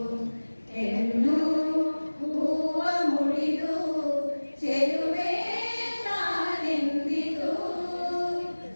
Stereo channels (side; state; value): both; inverted; correlation -1.00